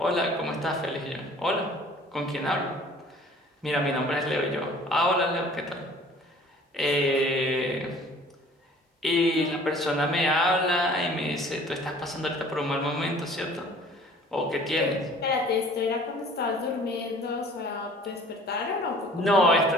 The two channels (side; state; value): both; normal; correlation 0.50